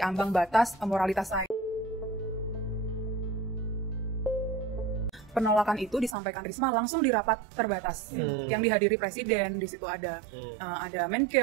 ambang batas moralitas saya. Penolakan itu disampaikan Risma langsung di rapat terbatas yang dihadiri presiden. Di situ ada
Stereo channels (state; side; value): drops out; left; at 6.2 s